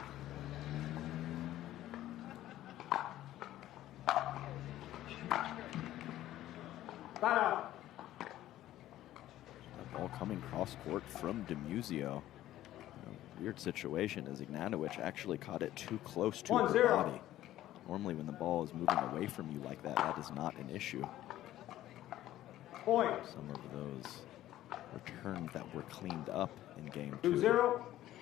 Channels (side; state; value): right; quieter; 13.9 dB